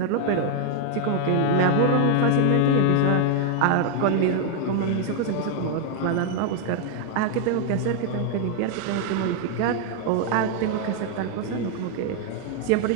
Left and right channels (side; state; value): both; different; correlation 0.00